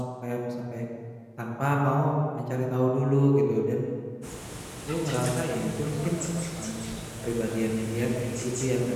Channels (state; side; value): identical; both; correlation 1.00